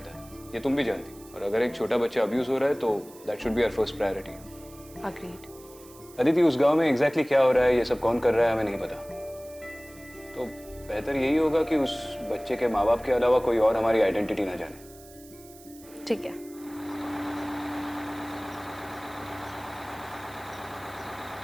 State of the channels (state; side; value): noise; right; hiss, 22 dB below the sound